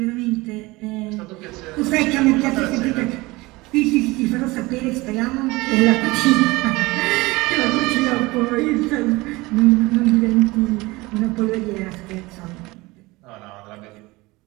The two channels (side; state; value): left; quieter; 22.0 dB